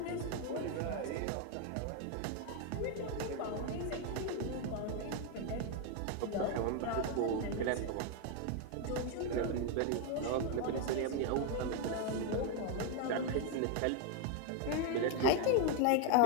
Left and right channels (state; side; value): different; both; correlation 0.01